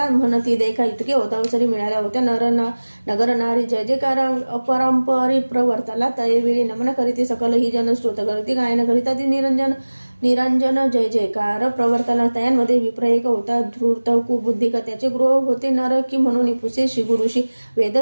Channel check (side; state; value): both; inverted; correlation -1.00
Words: म्हणती देखा इतके होता अवसरी मिळाल्या होत्या नगर नारी जय जयकार अपरंपरी प्रवर्ताला तयवेळी नमन करीती सकल ही जन स्तोत्र करीती गायन करिता ती निरंजन निरंजन जय जयकार प्रवर्तना तयांमध्ये विप्र एक होता धूर्त कुबुद्धिक त्याचे गृह होते नरकी म्हणून पुसे श्री गुरुशी